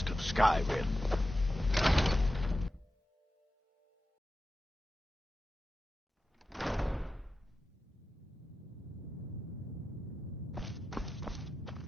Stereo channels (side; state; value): both; normal; correlation 0.92